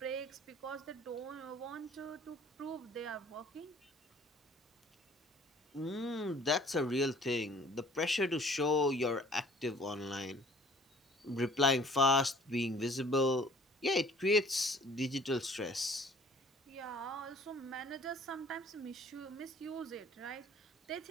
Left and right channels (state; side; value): normal; both; correlation 0.53